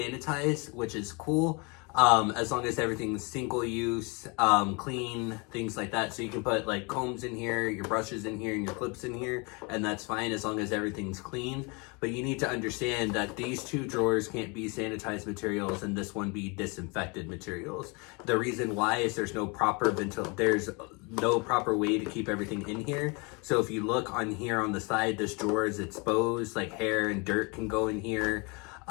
which is cool. As long as everything's single use, clean, things like that. So you can put like combs in here, your brushes in here, and your clips in here, and that's fine as long as everything's clean. But you need to understand that these two drawers can't be sanitized materials and this one be disinfected materials. The reason why is there's no proper way to keep everything in here. So if you look on here on the side, this drawer is exposed, like hair and dirt can go in here.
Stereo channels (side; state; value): right; quieter; 30.2 dB